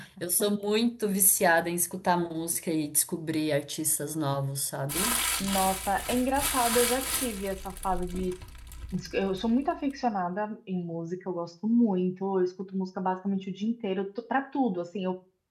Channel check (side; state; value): both; identical; correlation 1.00